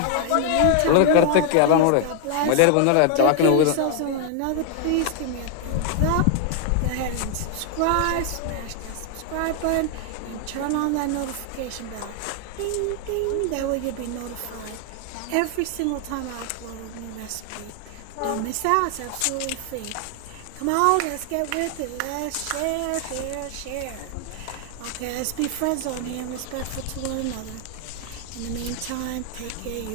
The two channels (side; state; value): both; different; correlation 0.00